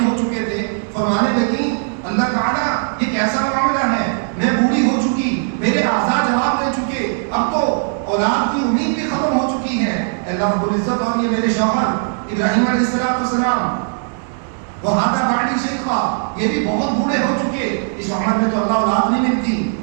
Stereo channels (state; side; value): silent; left; digital silence